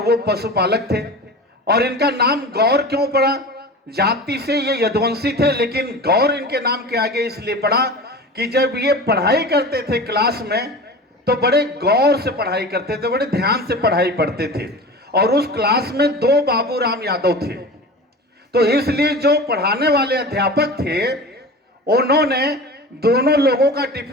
वो पशुपालक थे। और इनका नाम गौर क्यों पड़ा? जाति से ये यदुवंशी थे, लेकिन गौर इनके नाम के आगे इसलिए पड़ा कि जब ये पढ़ाई करते थे क्लास में तो बड़े गौर से पढ़ाई करते थे, बड़े ध्यान से पढ़ाई पढ़ते थे। और उस क्लास में 2 बाबूराम यादव थे, तो इसलिए जो पढ़ाने वाले अध्यापक थे उन्होंने दोनों लोगों का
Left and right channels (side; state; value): both; normal; correlation 0.33